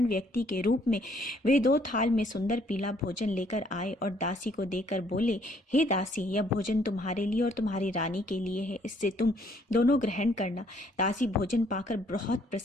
व्यक्ति के रूप में वे 2 थाल में सुंदर पीला भोजन लेकर आए और दासी को देकर बोले, हे दासी, यह भोजन तुम्हारे लिए और तुम्हारी रानी के लिए है, इससे तुम दोनों ग्रहण करना। दासी भोजन पाकर बहुत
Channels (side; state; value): both; normal; correlation 0.65